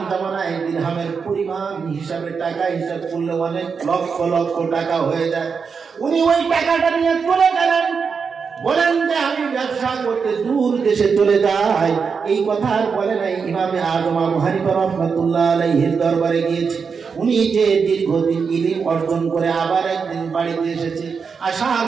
জামানায় দিরহামের পরিমাণ হিসাবে টাকা হিসাব করলে অনেক লক্ষ লক্ষ টাকা হয়ে যায়। উনি ওই টাকাটা নিয়ে চলে গেলেন, বলেন যে আমি ব্যবসা করতে দূর দেশে চলে যাই। এই কথা আর বলে নাই, ইমামে আযম আবু হানিফা রাহমাতুল্লাহ আলাইহির দরবারে গিয়েছে। উনি যে দীর্ঘদিন ইলম অর্জন করে আবার একদিন বাড়িতে এসেছে, আসার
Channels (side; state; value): left; quieter; 5.7 dB